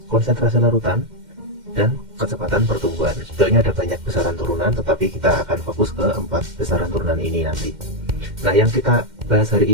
konsentrasi larutan, dan kecepatan pertumbuhan. Sebenarnya ada banyak besaran turunan, tetapi kita akan fokus ke 4 besaran turunan ini nanti. Nah, yang kita bahas hari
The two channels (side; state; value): left; late; 2.1 ms